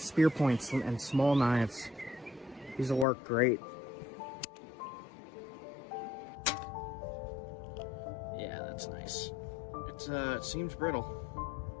points and small knives. These will work great. Yeah, that's nice. It seems brittle.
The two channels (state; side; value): drops out; right; at 3.1 s